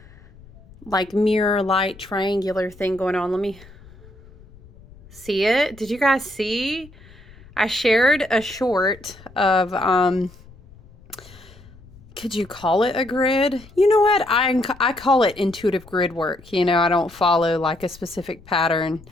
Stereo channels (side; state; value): left; noise; rumble, 23 dB below the sound